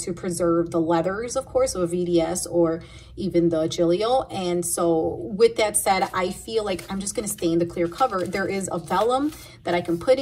preserve the leathers, of course, of a VDS or even the Giglio. And so with that said, I feel like I'm just going to stay in the clear cover. There is a vellum that I can put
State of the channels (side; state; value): both; identical; correlation 1.00